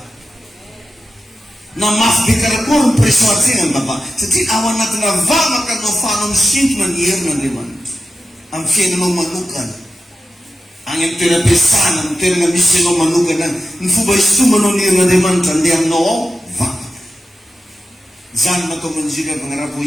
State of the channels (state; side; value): normal; both; correlation 0.92